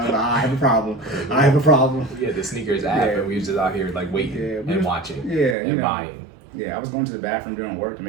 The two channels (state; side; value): drops out; left; at 5.6 s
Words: have a problem. I have a problem. We had the sneakers app, and we was just out here like waiting and watching, and buying. Yeah, I was going to the bathroom doing work to